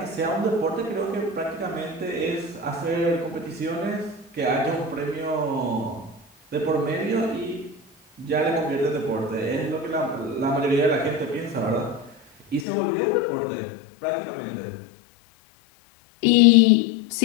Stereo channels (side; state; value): right; drops out; at 12.7 s